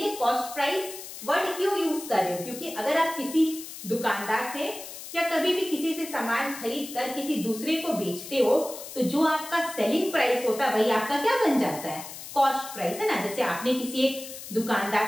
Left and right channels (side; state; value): left; noise; hiss, 12 dB below the sound